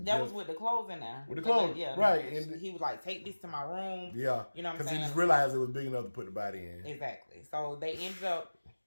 That was with the clothes in there. With the clothes, right? And he was like, "Take this to my room." Yeah, you know what I'm saying? Because he just realized it was big enough to put the body in. Exactly. So they ended up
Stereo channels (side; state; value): both; inverted; correlation -1.00